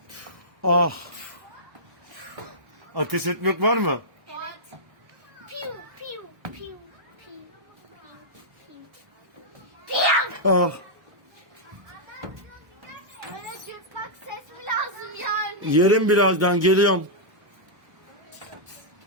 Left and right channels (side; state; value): left; late; 1.2 ms